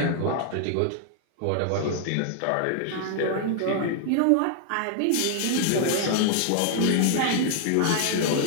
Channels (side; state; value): both; different; correlation 0.00